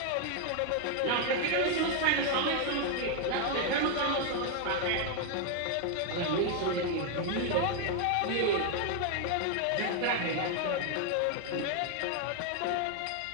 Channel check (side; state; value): both; different; correlation 0.00